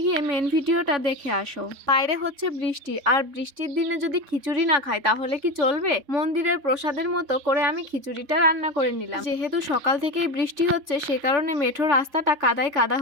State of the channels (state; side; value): late; left; 3.5 ms